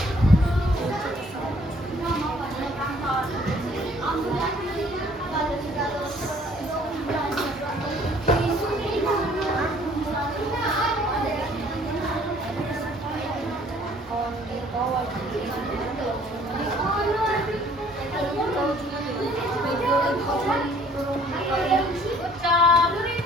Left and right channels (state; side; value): normal; both; correlation 0.57